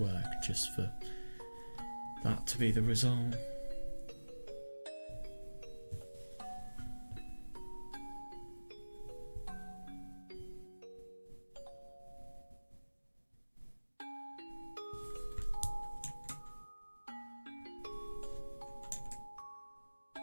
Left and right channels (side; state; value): both; inverted; correlation -1.00